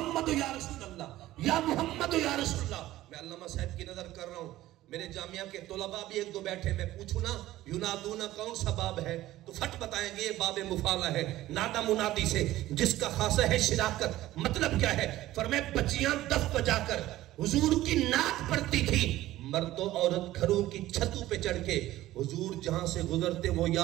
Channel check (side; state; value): left; quieter; 15.5 dB